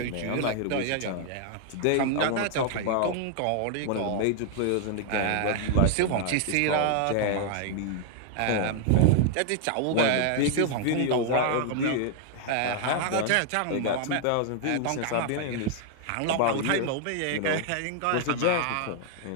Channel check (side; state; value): both; different; correlation 0.00